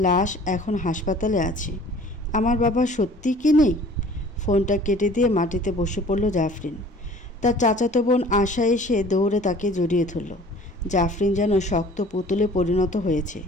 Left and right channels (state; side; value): normal; both; correlation 0.49